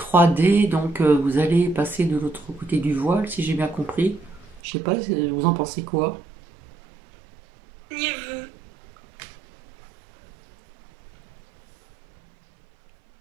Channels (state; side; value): drops out; left; at 4.6 s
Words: donc vous allez passer de l'autre côté du voile, si j'ai bien compris. Je sais pas, vous en pensez quoi? Renseignez-vous.